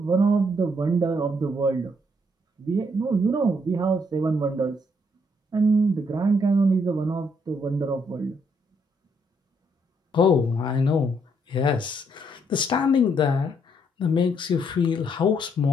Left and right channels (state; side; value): normal; both; correlation 0.72